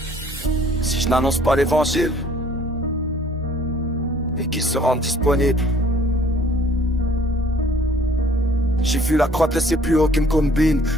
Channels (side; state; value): both; normal; correlation 0.57